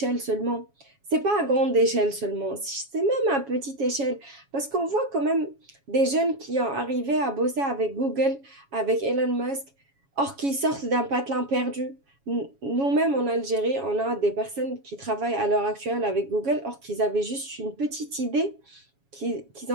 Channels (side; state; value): left; late; 7.2 ms